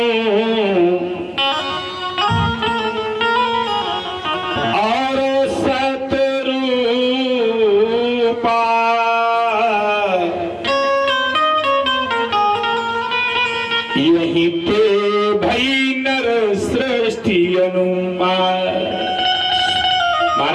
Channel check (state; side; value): identical; both; correlation 1.00